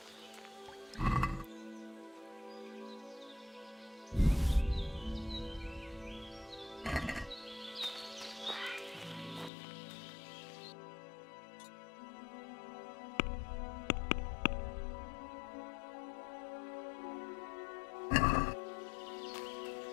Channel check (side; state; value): right; drops out; at 9.5 s